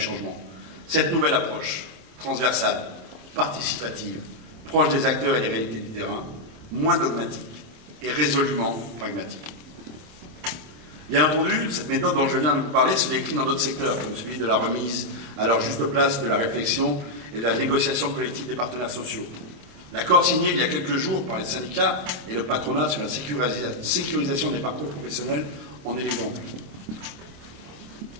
Cette nouvelle approche, transversale, participative, proche des acteurs et des réalités du terrain, moins dogmatique et résolument pragmatique. Bien entendu, cette méthode dont je viens de vous parler se décline dans d'autres secteurs, comme celui de la remise à leur juste place de la réflexion et de la négociation collective des partenaires sociaux. L'accord signé il y a quelques jours par les syndicats et le patronat sur la sécurisation des parcours professionnels en est l'exemple.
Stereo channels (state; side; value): late; left; 26 ms